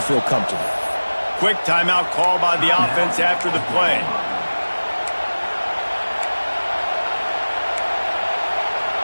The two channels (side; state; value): both; inverted; correlation -1.00